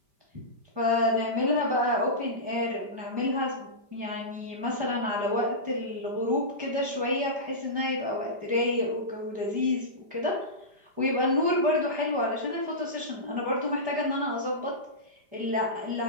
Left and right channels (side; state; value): left; late; 5.1 ms